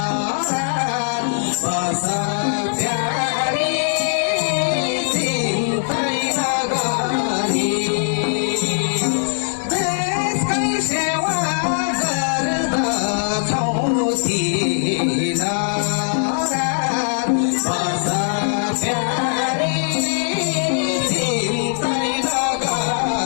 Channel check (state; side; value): silent; right; digital silence